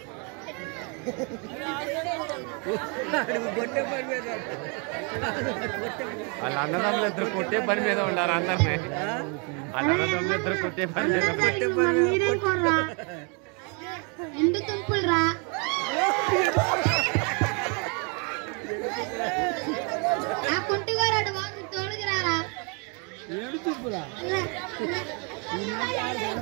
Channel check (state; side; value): quieter; left; 35.1 dB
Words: వాళ్ళ అన్నదమ్ములు ఇద్దరు కొట్టే పని మీద ఉండారు అందరినీ. వాళ్ళ అన్నదమ్ములు ఇద్దరు కొట్టే పని మీద మీరేం కోర్రా ఎండు తుంపులు రా ఆ కుంటిగారాడు బాగు తోడుకు రారా